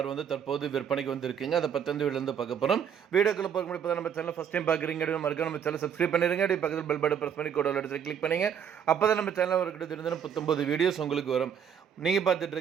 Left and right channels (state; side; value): quieter; left; 8.0 dB